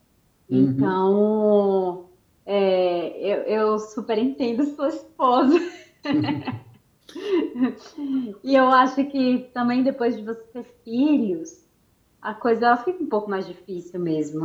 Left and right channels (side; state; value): both; identical; correlation 1.00